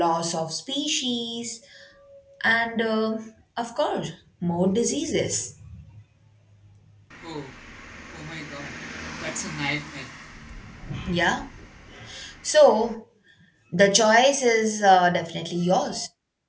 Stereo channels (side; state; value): both; identical; correlation 1.00